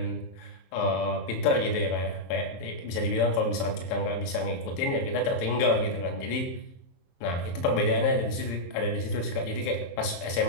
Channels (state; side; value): late; right; 22 ms